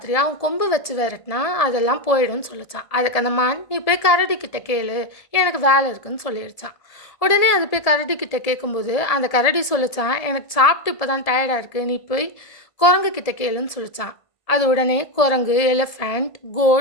அவன் கொம்பு வச்சு விரட்டினா அதெல்லாம் போயிடும்னு சொல்லிச்சான். அதுக்கு அந்த மான், நீ போய் கரடி கிட்ட கேளு, எனக்கு வேலை இருக்குன்னு சொல்லிடுச்சான். உடனே அது போய் கரடி கிட்ட கேட்கும்போது அந்த கரடி சொல்லிச்சான், எனக்கு சாப்பிட்டு இப்போ தான் டயர்டாக இருக்குது, நீ போய் குரங்கு கிட்ட கேளுன்னு சொல்லிச்சான். அது உடனே குரங்கு, எலிஃபண்ட்,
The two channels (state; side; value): late; right; 1.7 ms